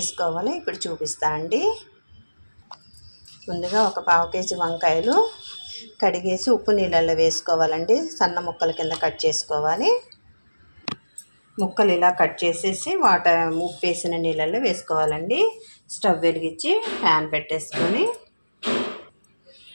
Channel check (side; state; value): both; inverted; correlation -1.00